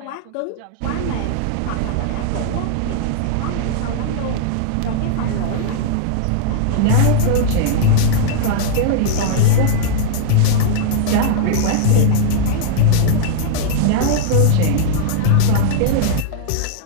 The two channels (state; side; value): different; both; correlation -0.01